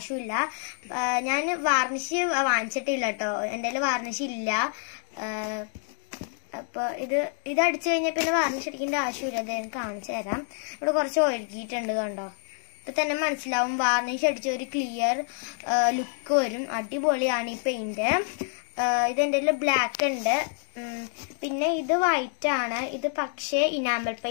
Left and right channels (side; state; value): right; silent; 56 dB below the other